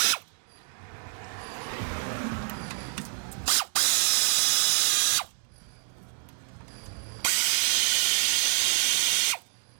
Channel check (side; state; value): left; silent; 60 dB below the other